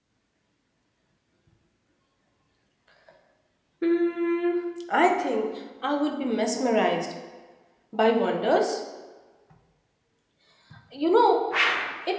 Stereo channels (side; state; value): both; identical; correlation 1.00